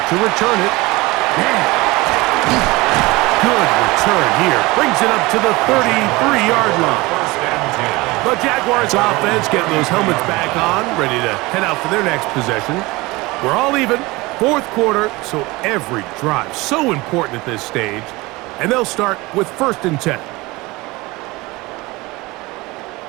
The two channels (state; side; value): quieter; left; 22.1 dB